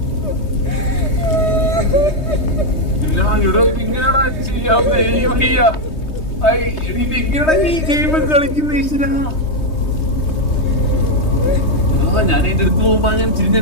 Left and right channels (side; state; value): right; late; 3.2 ms